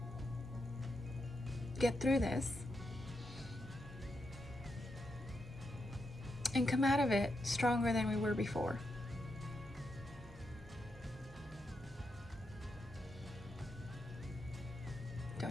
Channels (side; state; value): both; normal; correlation 0.84